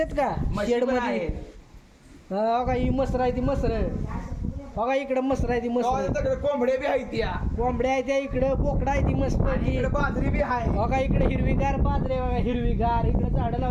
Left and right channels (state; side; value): identical; both; correlation 1.00